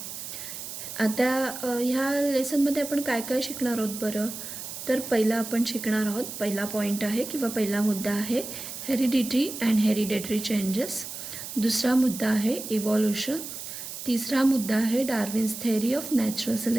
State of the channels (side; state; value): right; noise; hiss, 9 dB below the sound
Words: आता ह्या लेसनमध्ये आपण काय काय शिकणार आहोत बरं? तर पहिला आपण शिकणार आहोत, पहिला पॉईंट आहे किंवा पहिला मुद्दा आहे हेरिडिटी अँड हेरिडेटरी चेंजेस. दुसरा मुद्दा आहे इव्हॉल्युशन. तिसरा मुद्दा आहे Darwin's theory of natural